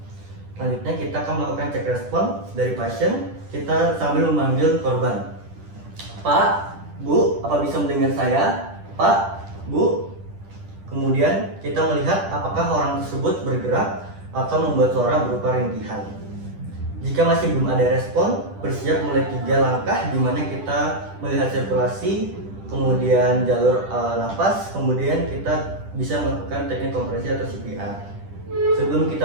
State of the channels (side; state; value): left; late; 10 ms